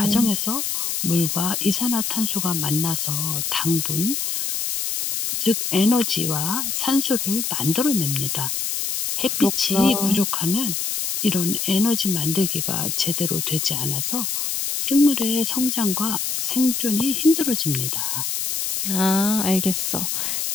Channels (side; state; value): left; noise; hiss, 1 dB below the sound